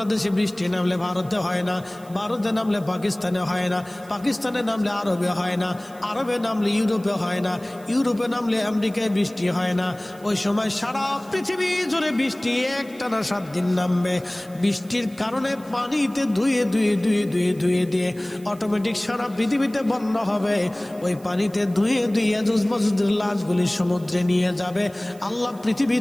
বৃষ্টি নামলে ভারতে হয় না, ভারতে নামলে পাকিস্তানে হয় না, পাকিস্তানে নামলে আরবে হয় না, আরবে নামলে ইউরোপে হয় না, ইউরোপে নামলে আমেরিকায় বৃষ্টি হয় না। ওই সময় সারা পৃথিবী জুড়ে বৃষ্টি একটানা 7 দিন নামবে। বৃষ্টির কারণে পানিতে ধুয়ে ধুয়ে ধুয়ে ধুয়ে ধুয়ে দিয়ে অটোমেটিক সারা পৃথিবীতে বন্যা হবে। ওই পানিতে ধুয়ে ধুয়ে ইয়াজুজ মাজুজের লাশগুলি সমুদ্রে নিয়ে যাবে। আল্লাহ পৃথিবী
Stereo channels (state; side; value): noise; right; hiss, 25 dB below the sound